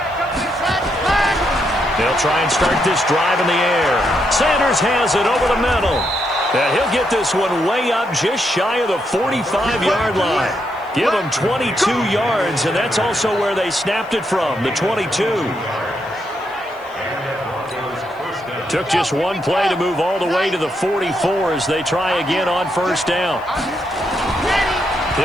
They'll try and start this drive in the air. Sanders has it over the middle. And he'll get this one way up just shy of the 45-yard line. Give them 22 yards, and that's also where they snapped it from, the 22. Took just one play to move all the way to the 44 as they try again on 1st down.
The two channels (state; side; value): noise; right; hiss, 30 dB below the sound